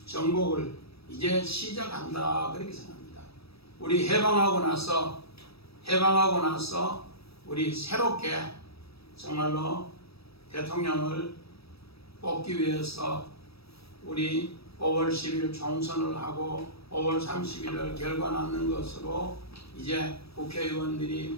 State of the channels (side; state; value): right; late; 0.77 ms